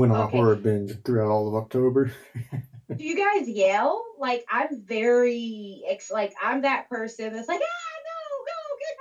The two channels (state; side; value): identical; both; correlation 1.00